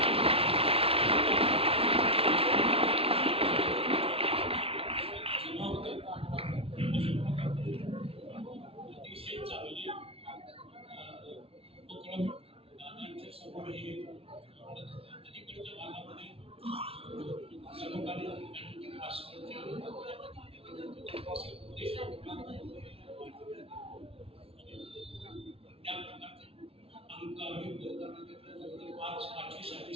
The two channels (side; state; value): left; late; 0.27 ms